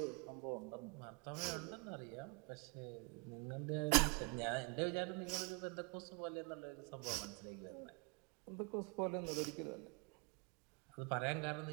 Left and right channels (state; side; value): quieter; left; 31.8 dB